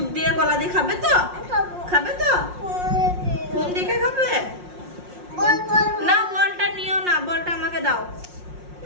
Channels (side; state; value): left; late; 5.6 ms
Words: দিয়ে কলা দিয়ে খাবে তো? খাবে তো? ফোন দেখে খাবে না? বলটা নিও না, বলটা আমাকে দাও।